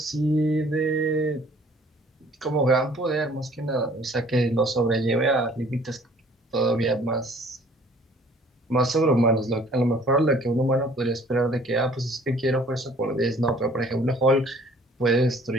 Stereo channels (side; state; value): both; normal; correlation 0.55